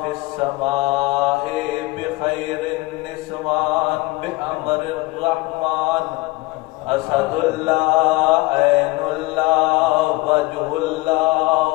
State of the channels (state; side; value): quieter; right; 21.7 dB